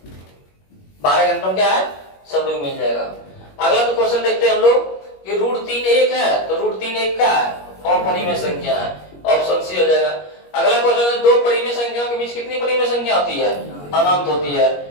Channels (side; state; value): right; late; 21 ms